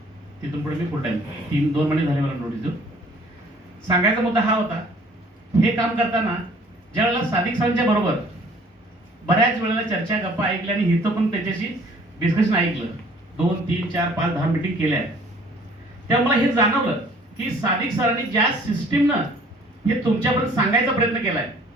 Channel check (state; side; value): normal; both; correlation 0.55